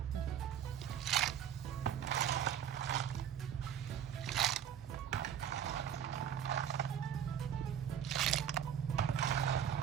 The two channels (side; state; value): left; quieter; 9.1 dB